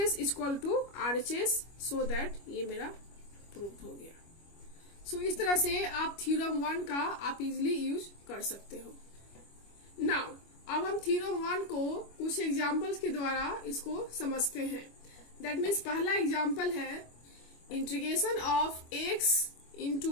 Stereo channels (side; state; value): right; late; 25 ms